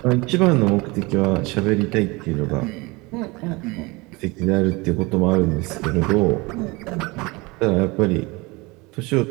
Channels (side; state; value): left; quieter; 24.5 dB